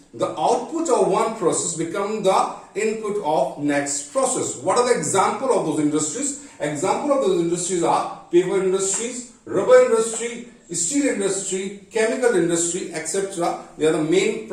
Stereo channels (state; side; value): identical; both; correlation 1.00